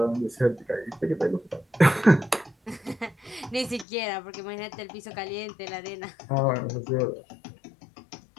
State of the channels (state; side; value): drops out; right; at 3.9 s